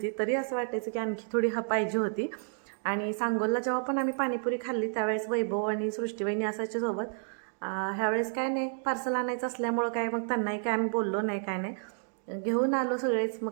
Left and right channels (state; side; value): silent; left; 57 dB below the other